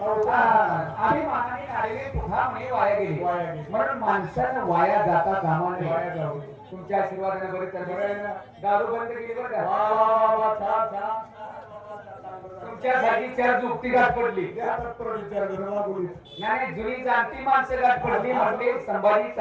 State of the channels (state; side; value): identical; both; correlation 1.00